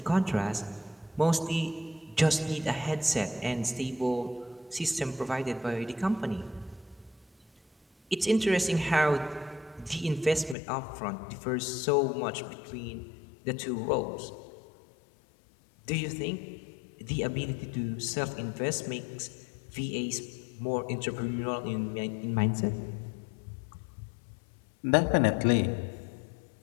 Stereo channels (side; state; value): right; drops out; at 10.6 s